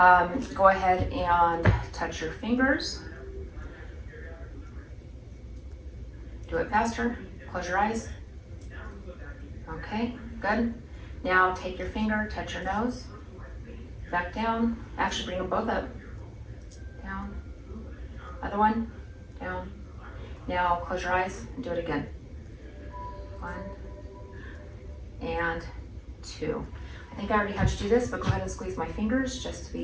Go ahead and touch your fingers. Do it faster, close your eyes. Okay, good. Now take your finger, touch your nose, back down. Actually bring them both up. Down, other one, down. Now close your eyes and do it again. 1 and 2. I think I already had you do this, but go ahead and squeeze my fingers just to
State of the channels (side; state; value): both; identical; correlation 1.00